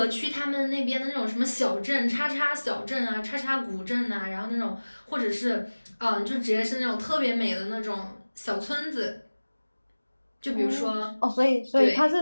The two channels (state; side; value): inverted; both; correlation -1.00